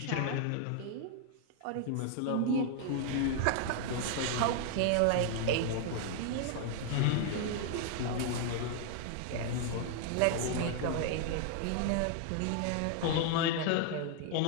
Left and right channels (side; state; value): both; different; correlation 0.00